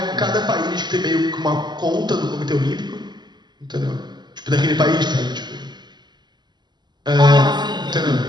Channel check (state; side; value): late; left; 0.21 ms